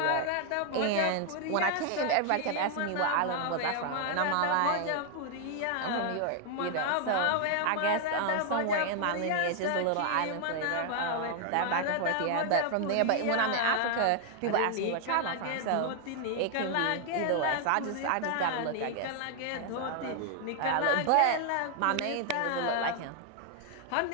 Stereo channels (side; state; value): both; different; correlation 0.00